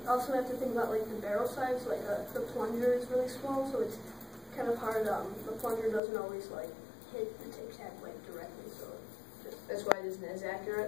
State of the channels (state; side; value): drops out; right; at 6.0 s